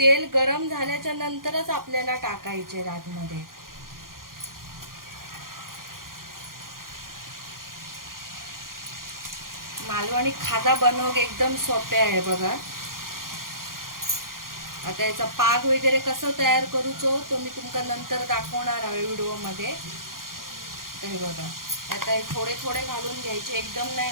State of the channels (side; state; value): left; late; 0.91 ms